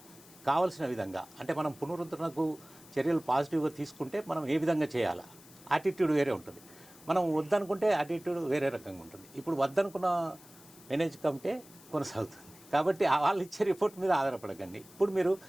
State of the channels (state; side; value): noise; left; hiss, 22 dB below the sound